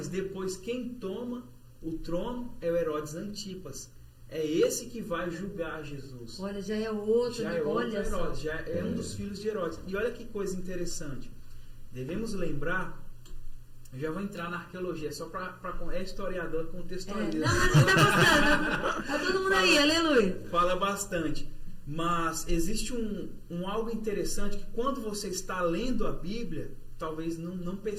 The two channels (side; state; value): both; identical; correlation 1.00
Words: depois quem toma o trono é o Herodes Antipas. É esse que vai julgar Jesus. Olha, já é outro, já é outro Herodes, já é um dos filhos de Herodes. E olha que coisa interessante. Devemos lembrar, eu já vou entrar na arqueologia, só para historiador contextualizar. Não, mas você tá gostando. Tá todo mundo aí, aleluia. Fala bastante. Mas existe um algo interessante que quando você está lendo a Bíblia, talvez não